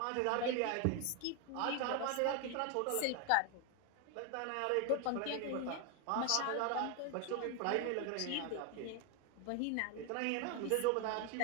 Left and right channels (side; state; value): both; different; correlation 0.01